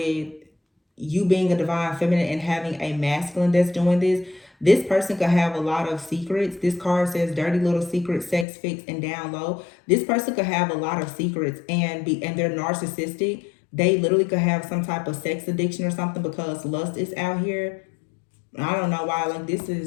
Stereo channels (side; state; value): right; drops out; at 8.5 s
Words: you being a divine feminine and having a masculine that's doing this person could have a lot of secrets. This card says dirty little secrets, sex fix, and down low. This person could have a lot of secrets and they're narcissistic. They literally could have some type of sex addiction or something because lust is out here. I don't know why, like this